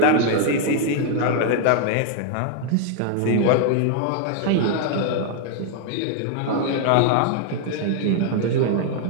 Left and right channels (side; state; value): both; different; correlation 0.00